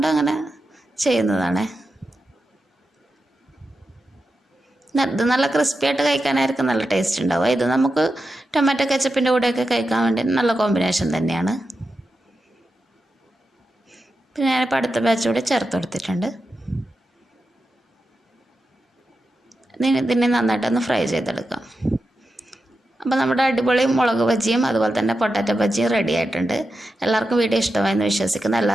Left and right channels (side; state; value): both; normal; correlation 0.89